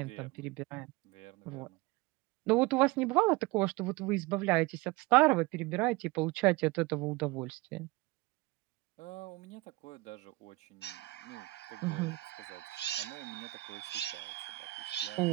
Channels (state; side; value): quieter; left; 21.1 dB